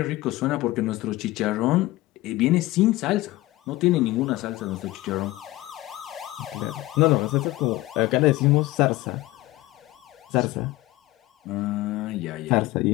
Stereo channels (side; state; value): right; quieter; 18.4 dB